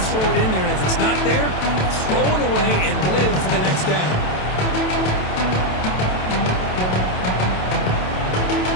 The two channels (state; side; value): late; right; 27 ms